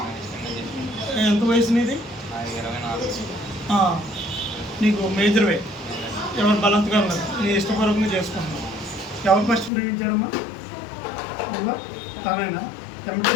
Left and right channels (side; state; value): right; drops out; at 9.7 s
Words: ఎంత వయసు నీది? నీకు మేజర్ వే. ఎవరు బలాత్కారం లేదు, నీ ఇష్టపూర్వకంగా చేసుకుంటున్నావు. ఎవరు ఫస్ట్ ప్రేమించారమ్మా? నువ్వా? తనేనా?